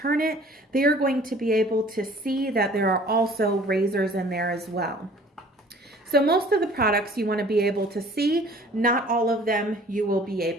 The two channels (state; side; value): normal; both; correlation 0.51